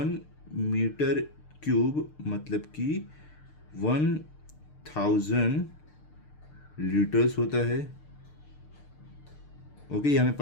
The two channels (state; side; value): late; right; 6.7 ms